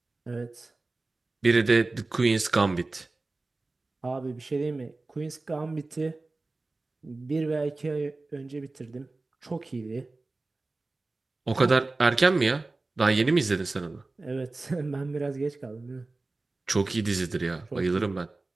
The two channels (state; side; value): quieter; left; 3.3 dB